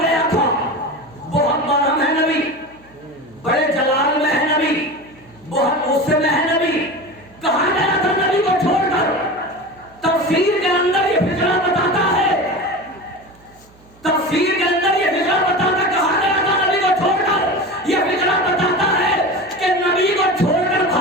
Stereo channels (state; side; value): noise; right; hum, 28 dB below the sound